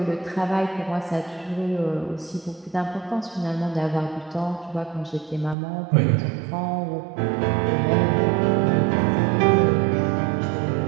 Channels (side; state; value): left; drops out; at 5.6 s